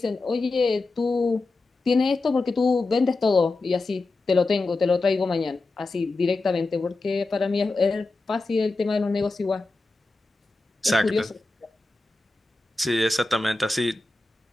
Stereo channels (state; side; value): quieter; right; 3.3 dB